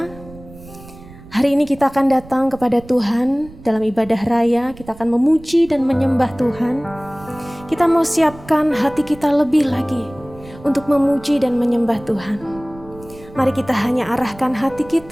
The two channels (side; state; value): right; noise; rumble, 20 dB below the sound